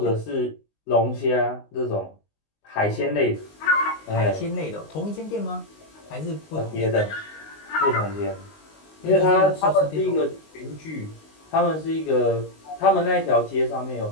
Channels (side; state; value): right; late; 19 ms